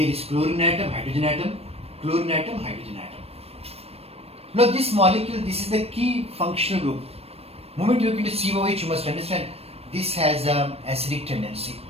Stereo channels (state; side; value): late; left; 0.29 ms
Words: is chlorine atom, hydrogen atom, chlorine atom, hydrogen atom. Now this molecule, this is the key functional group. Moment you look into COH, you must understand this has an acidic tendency.